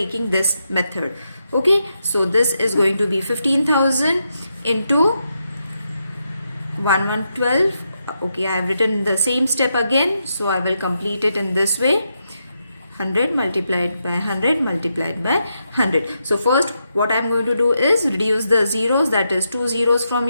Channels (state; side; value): inverted; both; correlation -0.84